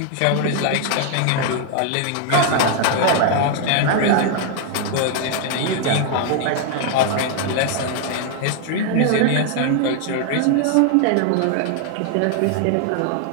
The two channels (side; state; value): both; different; correlation 0.00